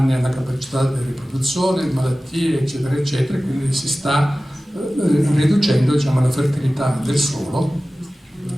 alla capacità di riproduzione, malattie, eccetera, eccetera, quindi si sta riducendo, diciamo, la fertilità del suolo.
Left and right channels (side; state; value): both; normal; correlation 0.96